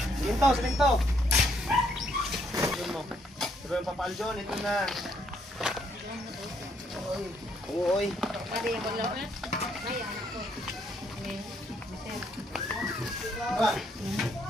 Silinto. Pero yung papaljon, ito na. Uy.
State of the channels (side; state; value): both; normal; correlation 0.71